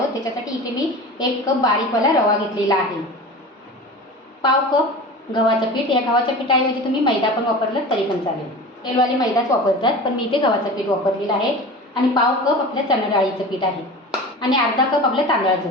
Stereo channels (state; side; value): normal; both; correlation 0.34